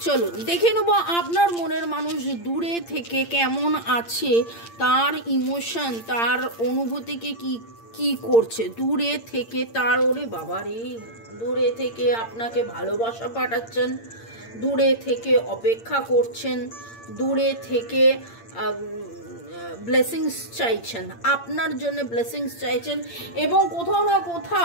চলুন দেখে নেবো আপনার মনের মানুষ দূরে থেকে কেমন আছে, তার ইমোশন, তার অনুভূতিকে কি কি করছে দূরে থেকে। তার ওরে বাবারে, দূরে থেকে আপনাকে ভালোবাসা পাঠাচ্ছেন, দূরে থেকে অপেক্ষা করছেন, দূরে থেকে ব্লেসিংস চাইছেন, আপনার জন্য ব্লেসিংস চাইছেন, এবং কোথাও না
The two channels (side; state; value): right; late; 8.7 ms